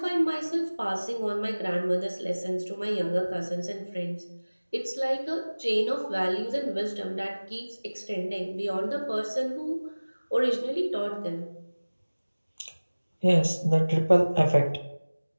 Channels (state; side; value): inverted; both; correlation -1.00